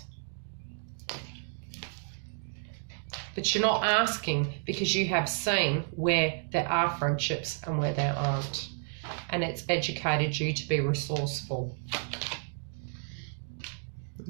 But you're not asking because you have seen where there are friendships and where there aren't. And it's educated you to be resourceful.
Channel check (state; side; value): silent; left; 57 dB below the other